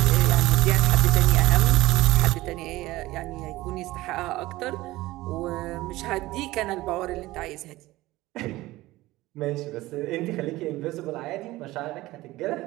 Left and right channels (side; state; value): left; quieter; 18.2 dB